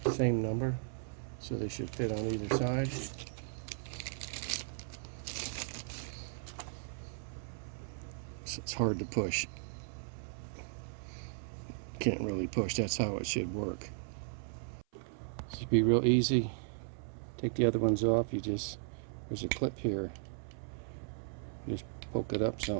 Same number, so they should fit on either side. So it's hard to push. Can't really push, that's how it should work. This should be real easy. Take the other ones off, there's a clip here. You just poke it up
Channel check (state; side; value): silent; left; 53 dB below the other